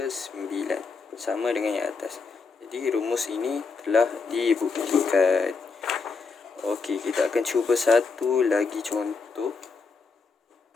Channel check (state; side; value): quieter; right; 4.6 dB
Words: 9, sama dengan yang atas. Jadi rumus ini telah dibuktikan. Okey, kita akan cuba satu lagi contoh.